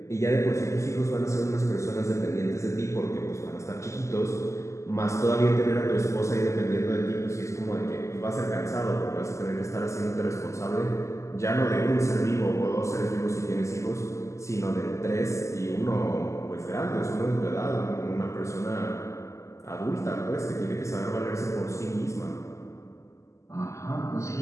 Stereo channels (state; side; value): late; right; 0.14 ms